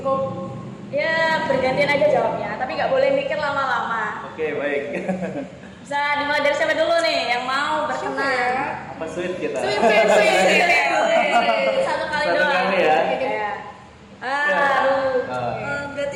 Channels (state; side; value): identical; both; correlation 1.00